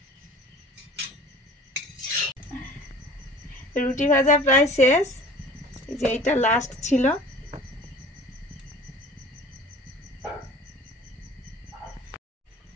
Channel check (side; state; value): both; normal; correlation 0.44